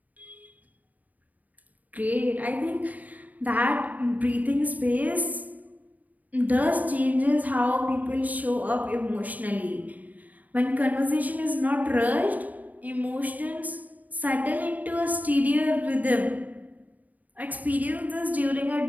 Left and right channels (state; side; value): late; left; 0.077 ms